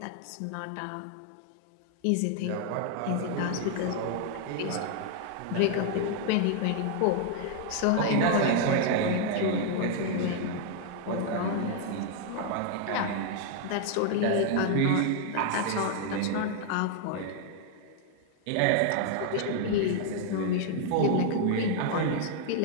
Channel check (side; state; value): both; different; correlation 0.00